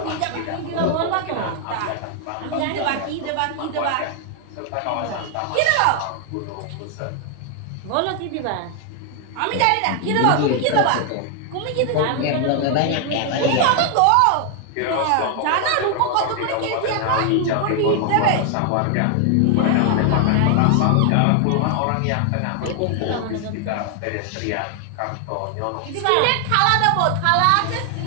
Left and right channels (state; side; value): different; both; correlation 0.00